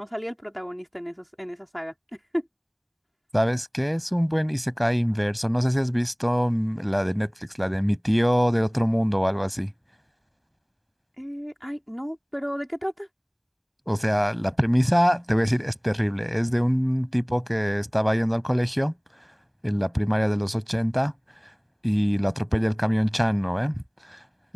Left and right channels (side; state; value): both; identical; correlation 1.00